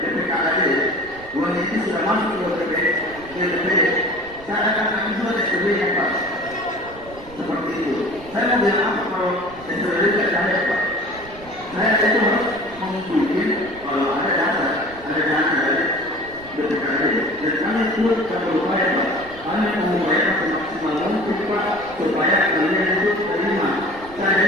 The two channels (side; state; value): right; noise; rumble, 20 dB below the sound